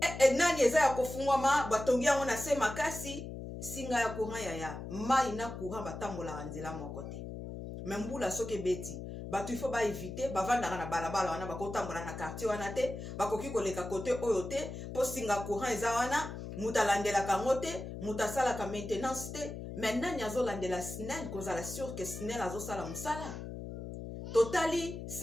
nani eza ya kofungwama batongi yango na se makasi singa ya courant yaya mai na courant batambolaka nzela moko te me mbula soki ebeti bato ifo baevite bavandaka na balabala wana bakotambola na quartier wana te bakoki koleka kote oyo te mpo singa courant eza wana mutu alandelaka yango te mutu asalaka maintenance te me nani azolandela SNEL kozala sur ke SNEL azosala mosala totali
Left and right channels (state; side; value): noise; left; hum, 8 dB below the sound